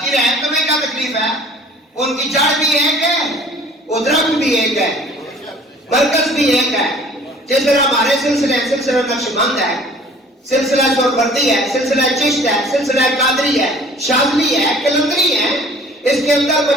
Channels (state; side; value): normal; both; correlation 0.51